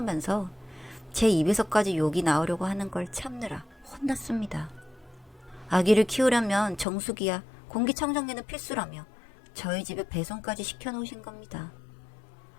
제 입에서까지 욕이 나오려고 하는 걸 참느라 혼났습니다. 아기를 키우려면 정수기야 공기청정기는 필수라며 저희 집에 배송까지 시켜놓으신 겁니다.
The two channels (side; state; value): right; drops out; at 6.9 s